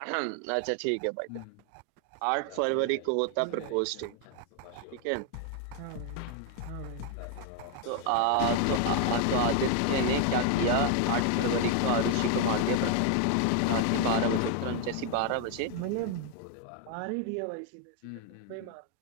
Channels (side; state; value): both; different; correlation 0.01